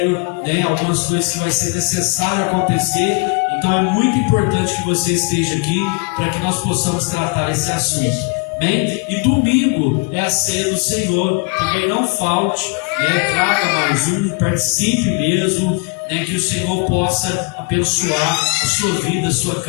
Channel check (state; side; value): quieter; right; 30.2 dB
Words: né? Algumas coisas que vai ser necessário acontecer. Então é muito importante que você esteja aqui para que nós possamos tratar esse assunto. Bem, e domingo é a ceia do Senhor, também não falte, né? Traga mais um, participe mesmo, né? Que o Senhor possa abençoar a sua vida, a sua